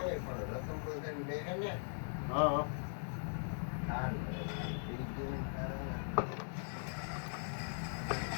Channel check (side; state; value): right; silent; digital silence